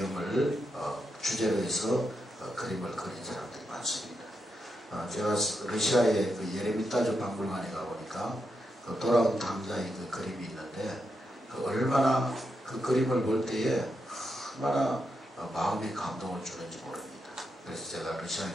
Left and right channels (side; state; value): both; normal; correlation 0.84